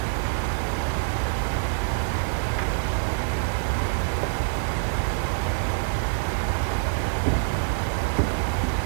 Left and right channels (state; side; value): silent; left; digital silence